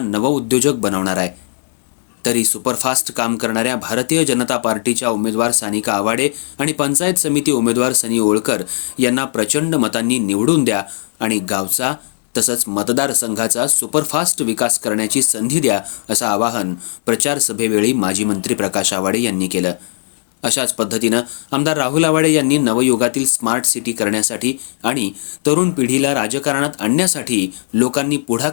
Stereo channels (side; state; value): right; silent; digital silence